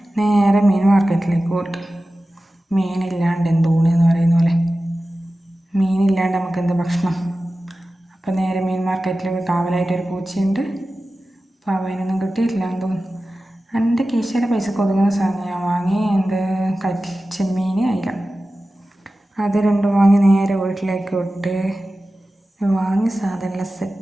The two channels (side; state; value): both; normal; correlation 0.95